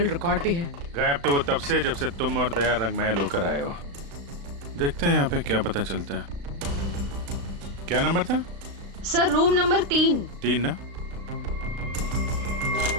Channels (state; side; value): late; left; 35 ms